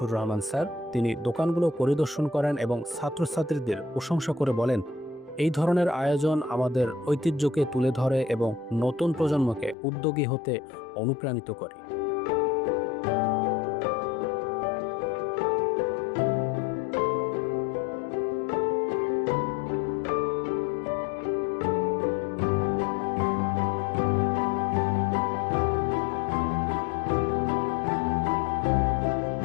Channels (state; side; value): drops out; right; at 9.8 s